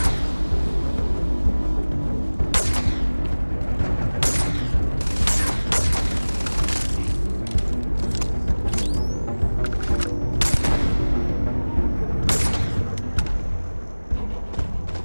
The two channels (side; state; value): both; inverted; correlation -1.00